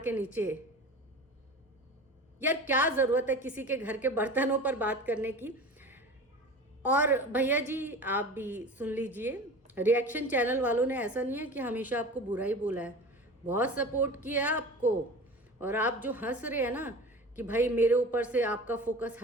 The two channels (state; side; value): normal; both; correlation 0.36